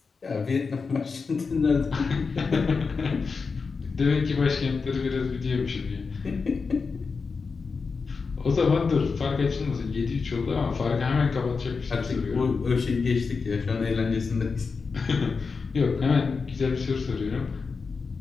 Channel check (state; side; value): quieter; right; 4.9 dB